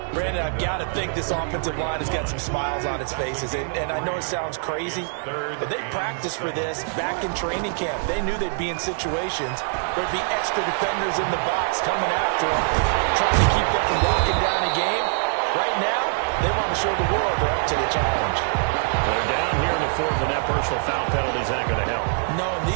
Brandon, I've got to think this offensive line has got some smiles on its faces. And I know it sounds crazy, but they practiced for this back in training camp. They knew they'd be in situations where there'd be extra defenders in the box coming after them, trying to keep them from locking down a game. Right now, they want to show the world they're up to the challenge. They're down here in the 4th, and that personal foul penalty is not going to help. No, in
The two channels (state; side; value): silent; left; 63 dB below the other